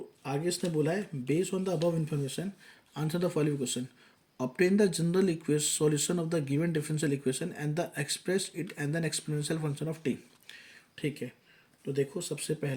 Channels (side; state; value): both; identical; correlation 1.00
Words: आगे इसने बोला है based on the above information answer the following question, obtain the general equation solution of the given differential equation and the express it and then exponential function of t। ठीक है, तो देखो सबसे